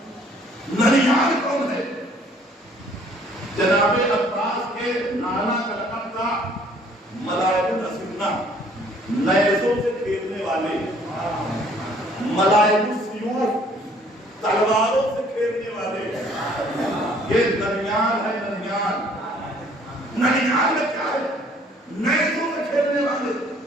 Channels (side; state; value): both; normal; correlation 0.59